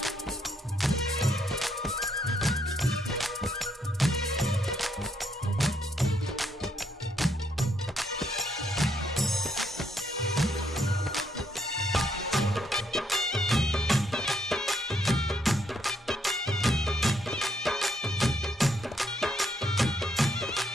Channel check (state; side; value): normal; both; correlation 0.74